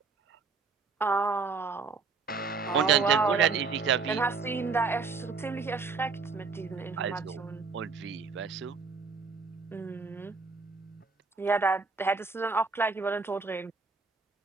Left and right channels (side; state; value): left; quieter; 4.7 dB